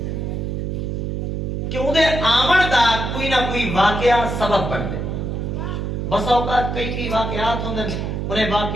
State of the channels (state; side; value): noise; right; hum, 3 dB below the sound